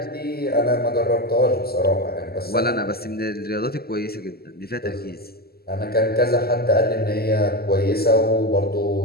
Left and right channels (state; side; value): late; right; 0.45 ms